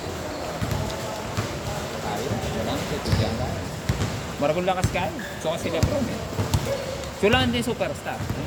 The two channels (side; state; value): both; identical; correlation 1.00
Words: Tayo, wala nang tutugyan ka. Maragol lakas kayo. So kasi Lebron eh. Sulaan din superstar.